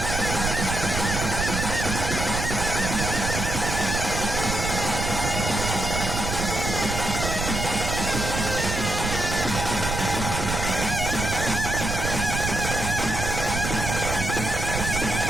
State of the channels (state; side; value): noise; right; rumble, 3 dB below the sound